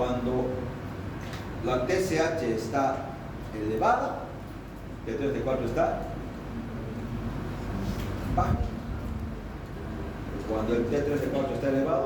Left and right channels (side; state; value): both; identical; correlation 1.00